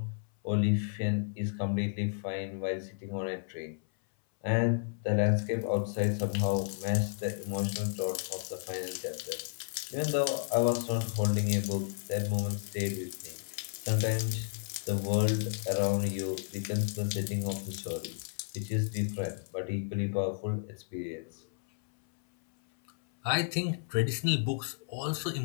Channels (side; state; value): right; silent; 56 dB below the other